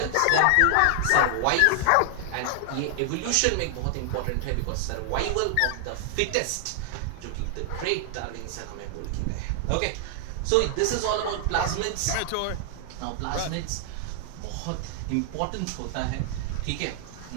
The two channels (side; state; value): both; different; correlation 0.00